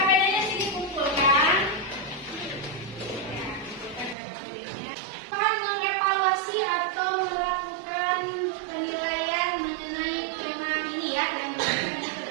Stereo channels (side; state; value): left; drops out; at 4.2 s